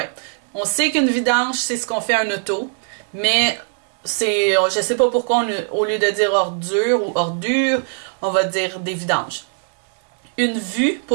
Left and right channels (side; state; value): left; silent; 65 dB below the other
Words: On sait qu'une vidange, c'est ce qu'on fait à un auto. Mais... je sais pas pourquoi, au lieu de dire ordure ou ordure, on va dire des vidanges. Une vue